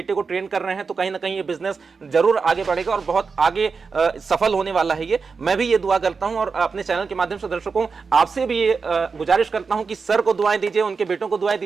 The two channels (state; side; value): quieter; left; 5.0 dB